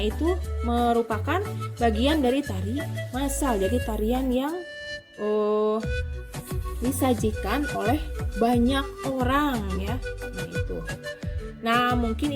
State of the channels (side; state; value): both; identical; correlation 1.00